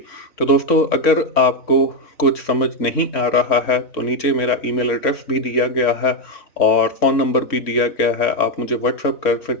तो दोस्तों अगर आपको कुछ समझ नहीं आ रहा है तो नीचे मेरा ईमेल एड्रेस भी दिया गया है और फ़ोन नंबर भी दिया गया है, आप मुझे व्हाट्सएप कर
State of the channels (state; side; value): late; right; 3.6 ms